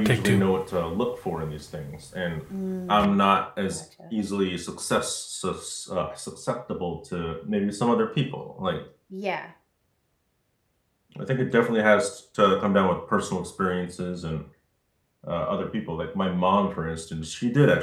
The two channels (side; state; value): both; identical; correlation 1.00